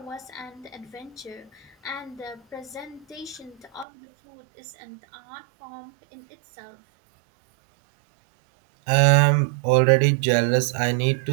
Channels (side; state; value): left; drops out; at 3.9 s